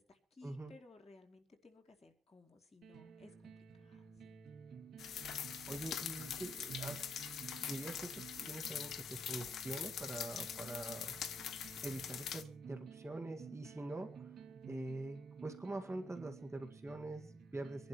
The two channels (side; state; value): both; normal; correlation 0.76